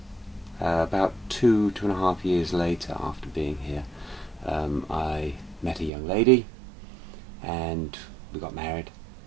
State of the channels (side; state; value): left; drops out; at 5.9 s